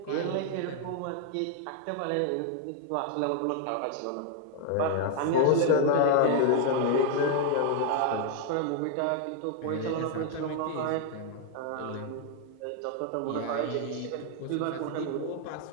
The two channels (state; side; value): different; both; correlation 0.01